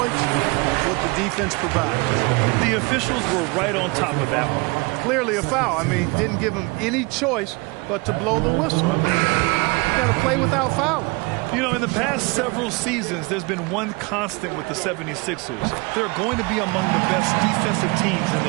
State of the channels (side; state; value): left; quieter; 26.6 dB